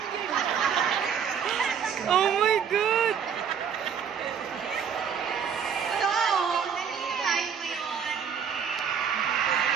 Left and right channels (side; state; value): left; quieter; 7.4 dB